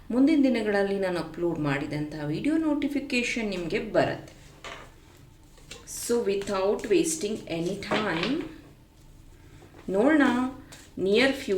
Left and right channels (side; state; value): both; identical; correlation 1.00